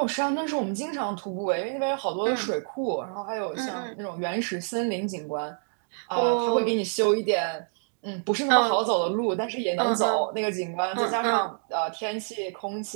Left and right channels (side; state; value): left; silent; digital silence